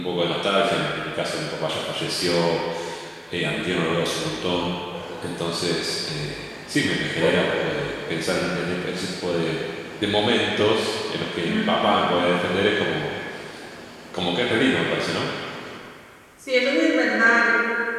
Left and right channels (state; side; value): identical; both; correlation 1.00